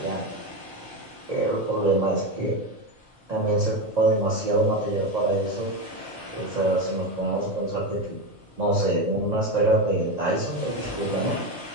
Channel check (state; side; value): normal; both; correlation 0.16